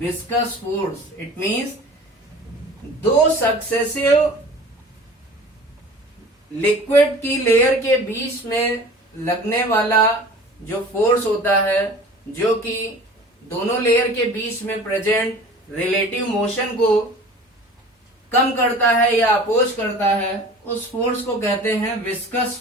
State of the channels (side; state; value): both; normal; correlation 0.42